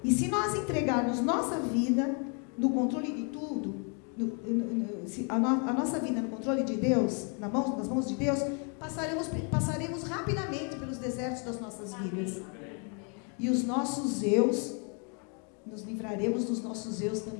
E se nós entregarmos nossa vida no controle de tudo, a nossa vida no controle de Deus, nas mãos de Deus, passaremos rapidamente pelos desertos das nossas vidas. E os nossos eus, nos livraremos dos nossos eus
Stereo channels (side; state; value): right; quieter; 38.1 dB